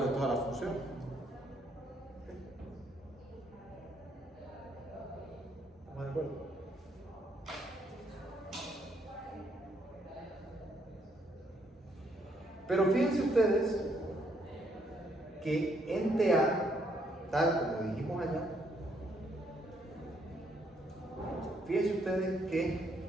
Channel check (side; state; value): both; normal; correlation 0.72